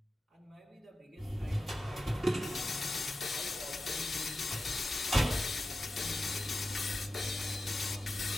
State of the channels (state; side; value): normal; both; correlation 0.92